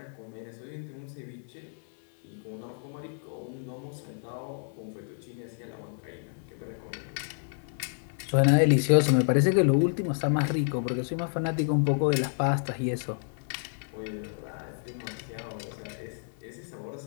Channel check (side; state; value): right; silent; digital silence